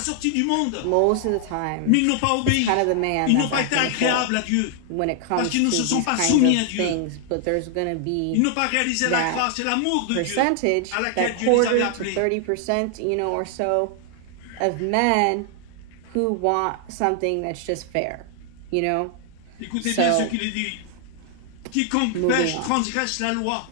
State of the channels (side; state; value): both; different; correlation 0.00